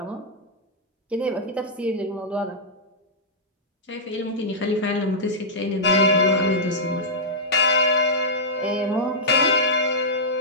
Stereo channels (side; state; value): both; normal; correlation -0.10